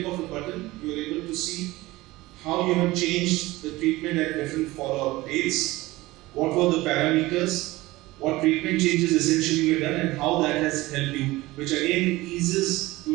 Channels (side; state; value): left; quieter; 19.4 dB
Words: of a button, you are able to see how you have changed the treatment at different follow-up dates, what were the parameters, what treatment changes essentially were done, and how that has helped you, which again eases